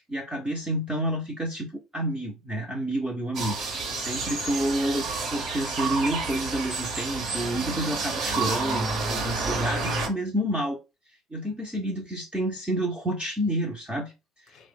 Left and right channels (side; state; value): both; normal; correlation 0.54